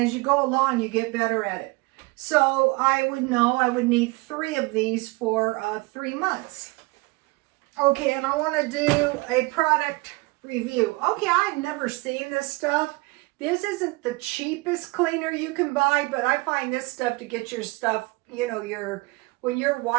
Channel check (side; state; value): left; quieter; 24.6 dB